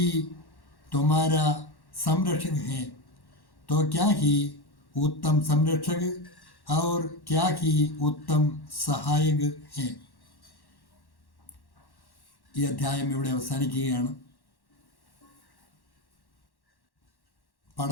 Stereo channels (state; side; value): late; right; 1.1 ms